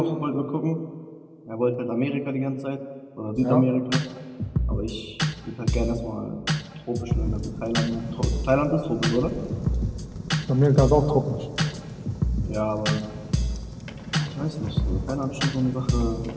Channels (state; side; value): identical; both; correlation 1.00